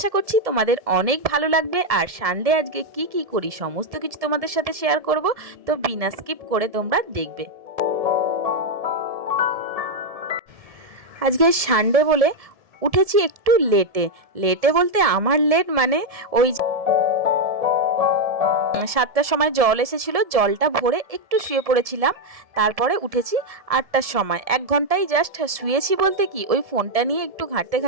করছি তোমাদের অনেক ভালো লাগবে। আর সানডে আজকে কি কি করি সমস্ত কিছু তোমাদের সাথে শেয়ার করব, তো বিনা স্কিপ করে তোমরা দেখবে। আজকে সানডে বলে উঠেছি একটু লেটে। লেটে বলতে আমার লেট মানে ওই 7টার সময় জল এসেছিল, জলটা ভরে একটু শুয়ে পড়েছিলাম। তারপরে উঠেছি 8টার সময়। 1 ঘন্টাই জাস্ট শুয়েছি বলতে কি, ওই ফোনটা নিয়ে একটু ঘাঁটতে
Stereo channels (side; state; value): left; late; 1.7 ms